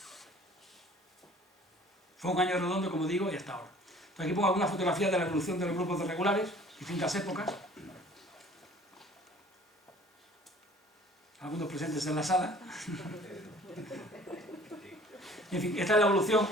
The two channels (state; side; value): normal; both; correlation 0.51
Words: Fue un año redondo, como digo, y hasta ahora. Entonces aquí pongo algunas fotografías de la evolución de los grupos de regulares, distintas épocas, algunos presentes en la sala. En fin, esta es la evolución